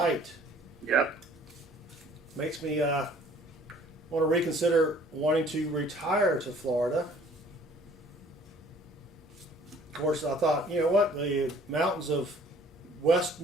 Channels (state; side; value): normal; both; correlation 0.55